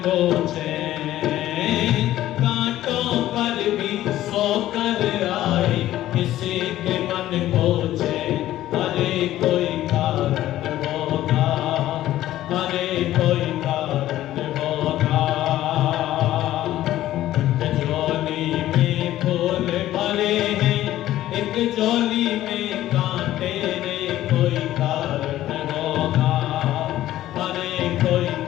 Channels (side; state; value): right; quieter; 14.0 dB